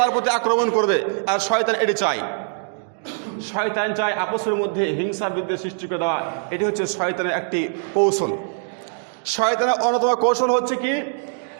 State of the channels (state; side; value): silent; left; 64 dB below the other